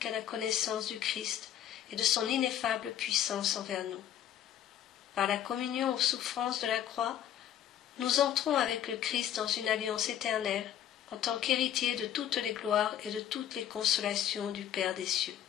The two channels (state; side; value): quieter; right; 10.7 dB